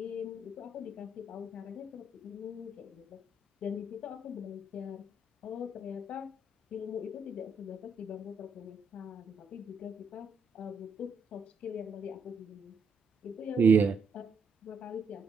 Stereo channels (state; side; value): quieter; left; 3.2 dB